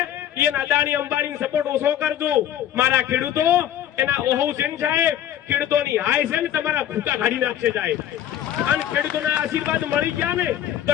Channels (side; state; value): right; quieter; 11.0 dB